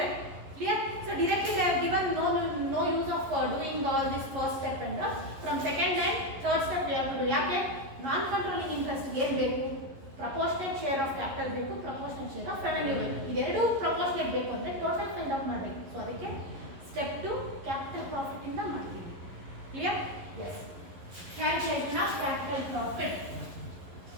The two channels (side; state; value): left; late; 11 ms